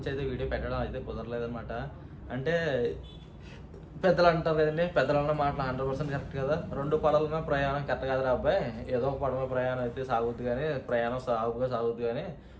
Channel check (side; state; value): both; identical; correlation 1.00